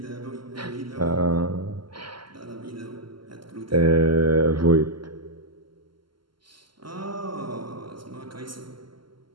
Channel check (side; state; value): left; late; 0.72 ms